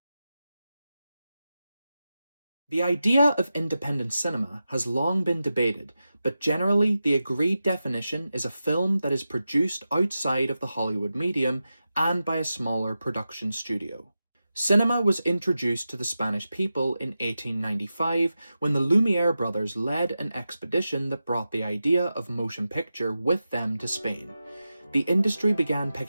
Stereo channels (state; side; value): inverted; both; correlation -0.92